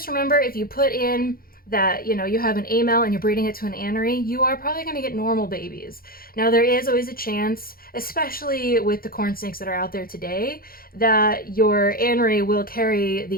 remember, if you put in that, you know, you have an A male and you're breeding it to an anery, you are probably going to get normal babies. Now, there is always a chance, especially with the corn snakes that are out there today, that your anery will carry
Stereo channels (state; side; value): late; right; 0.43 ms